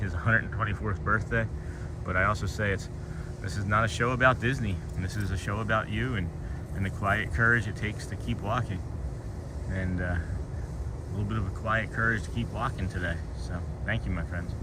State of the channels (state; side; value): identical; both; correlation 1.00